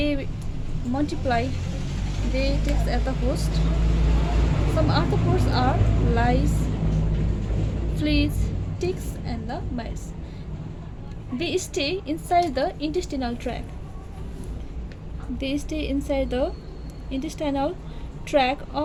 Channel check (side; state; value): both; identical; correlation 1.00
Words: multiply, they take as the host. Some arthropods are lice, fleas, ticks and the mites. They stay inside the intestinal tract. They stay inside the intestinal tract